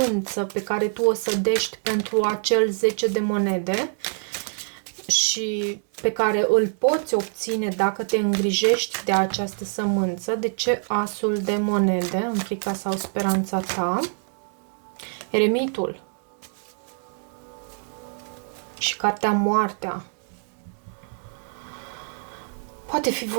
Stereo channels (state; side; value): silent; left; 62 dB below the other